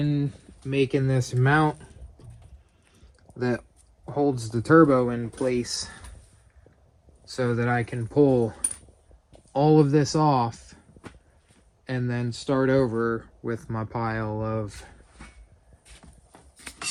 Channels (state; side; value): identical; both; correlation 1.00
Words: making this mount that holds the turbo in place so that I can pull all of this off and then start over with my pile of